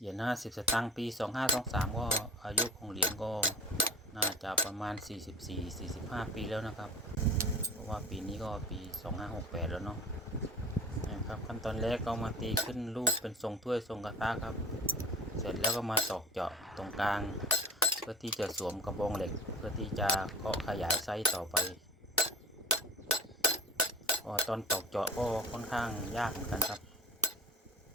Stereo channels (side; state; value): both; normal; correlation 0.39